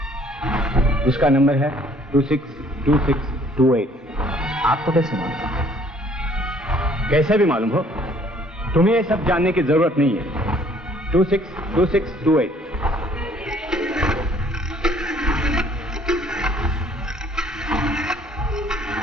उसका नंबर है 262628। आपको कैसे मालूम? कैसे भी मालूम हो, तुम्हें ये सब जानने की जरूरत नहीं है। 262628।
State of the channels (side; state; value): both; normal; correlation 0.59